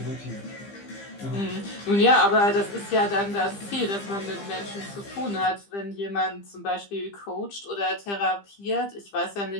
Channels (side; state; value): right; late; 15 ms